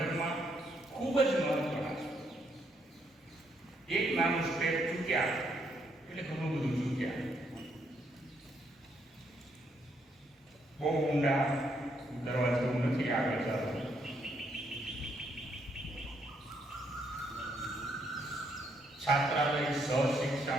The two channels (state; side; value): normal; both; correlation 0.74